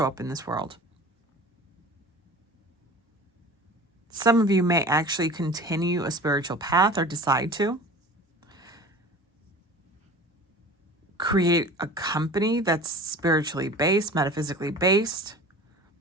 up in this world. Some of you may actually continue a spiritual path or decide to create a company that's spiritually based, metaphysically based,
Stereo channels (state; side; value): normal; both; correlation 0.39